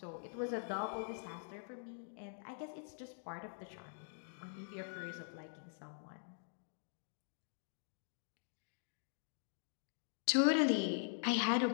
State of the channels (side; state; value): right; silent; digital silence